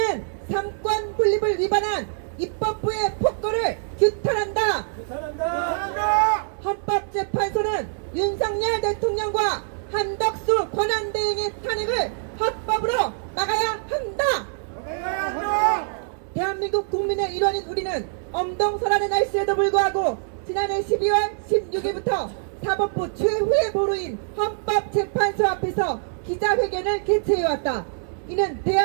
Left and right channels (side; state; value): left; silent; digital silence